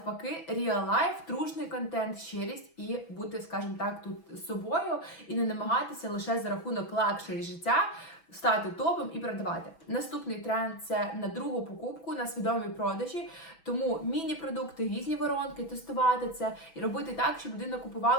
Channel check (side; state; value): right; late; 6.1 ms